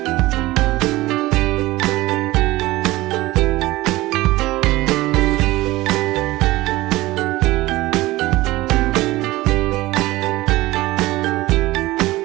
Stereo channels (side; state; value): left; quieter; 18.6 dB